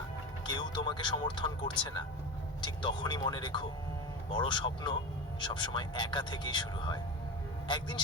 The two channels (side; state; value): both; normal; correlation 0.25